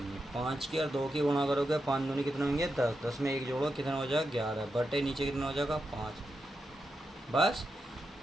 है। 5 की और 2 की गुणा करोगे 5 दूनी कितने होंगे 10, 10 में 1 जोड़ो कितना हो जाएगा 11 बटे नीचे कितना हो जाएगा 5। बस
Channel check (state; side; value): normal; both; correlation 0.87